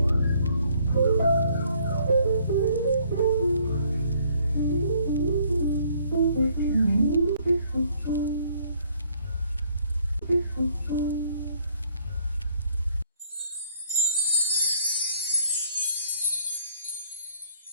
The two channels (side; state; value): both; inverted; correlation -0.64